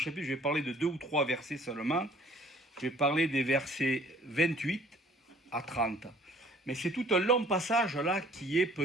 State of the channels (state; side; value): normal; both; correlation 0.55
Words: je vais parler de 2 ou 3 versets seulement. Je vais parler des versets 28 à 30. Mais c'est tout un long passage là qui est